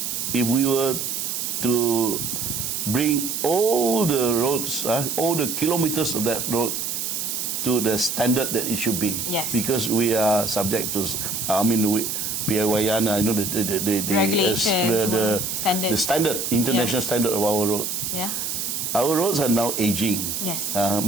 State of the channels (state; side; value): noise; right; hiss, 3 dB below the sound